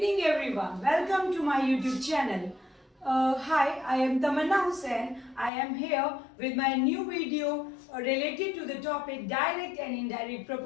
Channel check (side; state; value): right; drops out; at 5.5 s